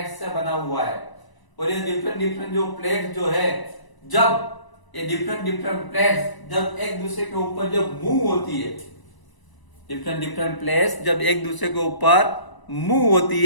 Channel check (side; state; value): right; late; 1.0 ms